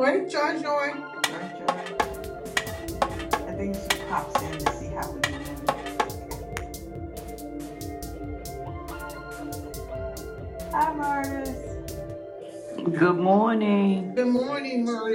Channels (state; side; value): identical; both; correlation 1.00